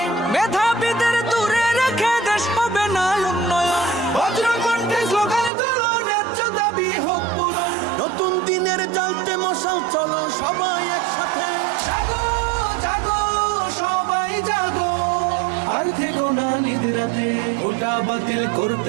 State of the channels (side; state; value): left; drops out; at 5.5 s